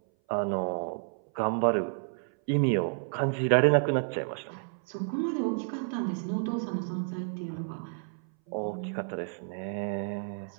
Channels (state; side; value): silent; left; 57 dB below the other